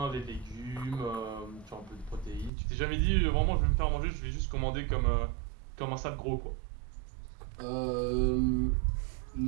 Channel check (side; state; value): left; drops out; at 2.5 s